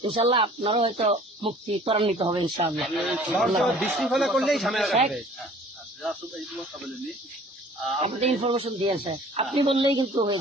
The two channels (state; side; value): normal; both; correlation 0.50